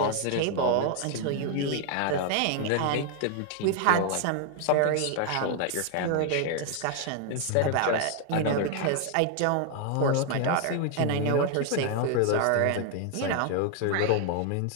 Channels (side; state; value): both; different; correlation 0.00